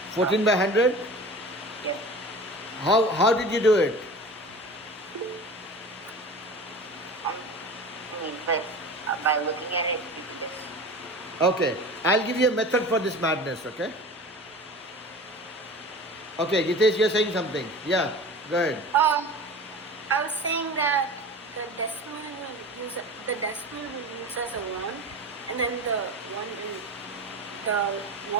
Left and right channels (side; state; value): both; normal; correlation 0.35